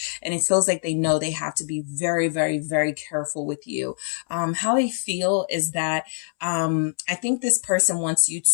And it feels like they know they have to be very, very, very careful with you. How they feel is that I think this person wants you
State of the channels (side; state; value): right; silent; 63 dB below the other